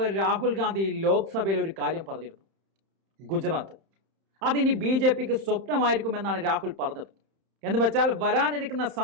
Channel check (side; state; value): left; late; 31 ms